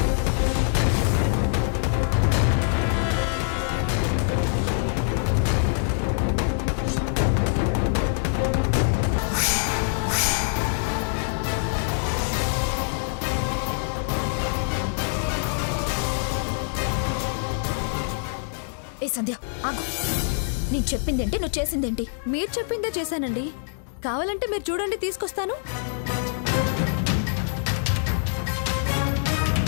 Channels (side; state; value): right; silent; digital silence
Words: ఏ సంధ్య ఆగు, నేను చెప్పిందేంటి, నువ్వు చేసిందేంటి? మీరు చెప్పిందే చేశానండి. కావాలంటే మీరు చూడండి, తీసుకొస్తాను.